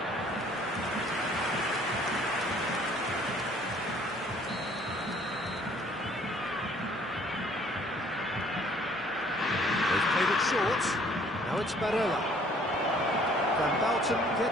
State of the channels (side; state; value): both; normal; correlation 0.58